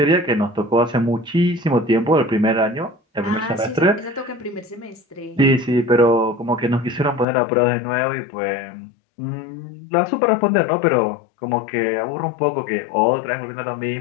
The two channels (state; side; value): drops out; right; at 7.2 s